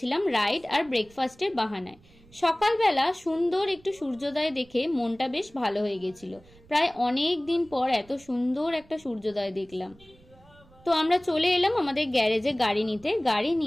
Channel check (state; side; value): noise; right; rumble, 26 dB below the sound